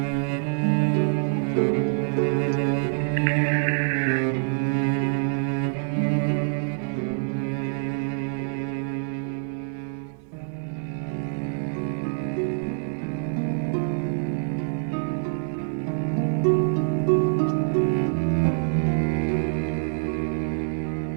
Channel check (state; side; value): silent; left; digital silence